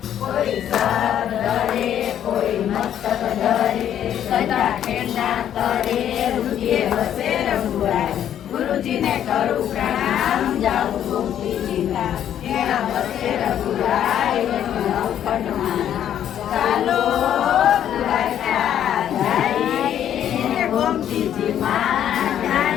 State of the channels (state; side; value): quieter; right; 10.3 dB